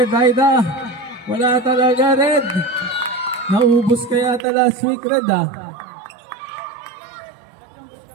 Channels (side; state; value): left; drops out; at 4.4 s